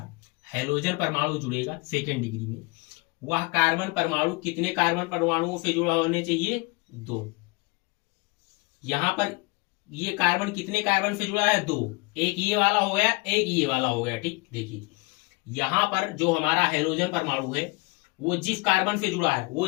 हेलोजन परमाणु जुड़ेगा सेकेंड डिग्री में, वह कार्बन परमाणु कितने कार्बन परमाणुओं से जुड़ा होने चाहिए, 2। यहां पर ये कार्बन कितने कार्बन से जुड़ा है, 2। एक ये वाला हो गया, एक ये वाला हो गया। ठीक, देखिए यहां पर जो हमारा हेलोजन परमाणु है वो जिस कार्बन से जुड़ा है, वो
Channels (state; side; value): quieter; right; 27.0 dB